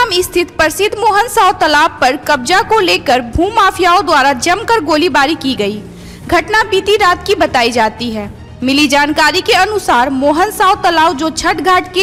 स्थित प्रसिद्ध मोहन साव तालाब पर कब्जा को लेकर भूमाफियाओं द्वारा जमकर गोलीबारी की गई। घटना बीती रात की बताई जाती है। मिली जानकारी के अनुसार मोहन साव तालाब जो छठ घाट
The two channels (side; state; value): both; identical; correlation 1.00